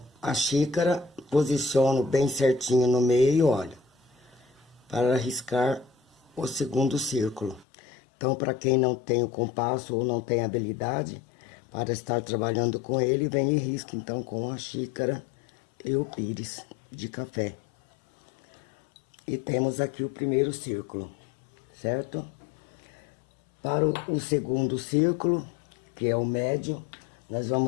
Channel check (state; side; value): drops out; right; at 7.7 s